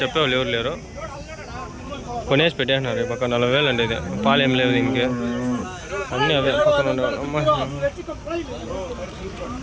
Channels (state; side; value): identical; both; correlation 1.00